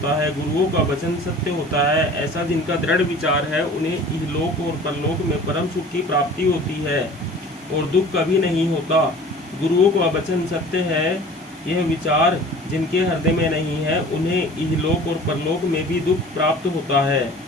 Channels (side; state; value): both; normal; correlation 0.44